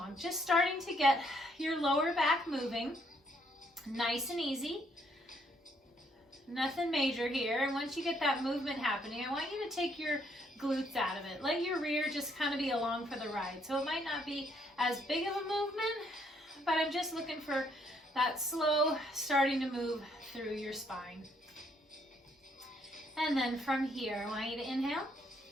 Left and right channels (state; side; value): normal; both; correlation 0.70